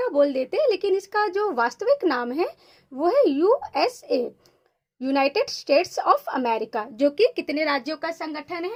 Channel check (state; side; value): identical; both; correlation 1.00